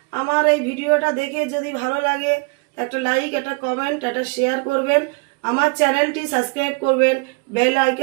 আমার এই ভিডিওটা দেখে যদি ভালো লাগে একটা লাইক, একটা কমেন্ট, একটা শেয়ার করবেন, আমার চ্যানেলটি সাবস্ক্রাইব করবেন, বেল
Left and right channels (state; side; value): quieter; left; 31.8 dB